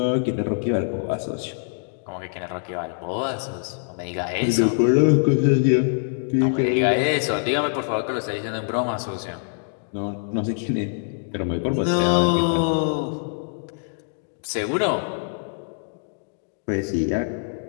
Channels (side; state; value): right; silent; digital silence